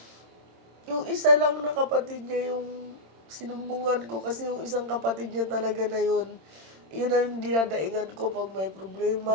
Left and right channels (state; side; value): late; left; 26 ms